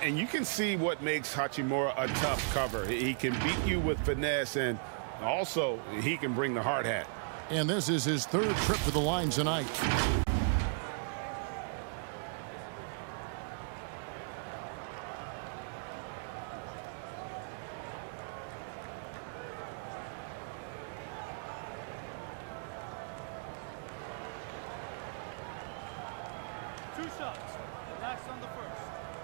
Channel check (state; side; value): silent; left; digital silence